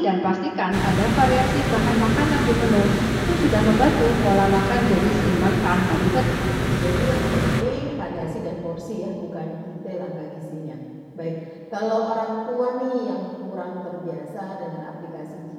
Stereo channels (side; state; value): both; identical; correlation 1.00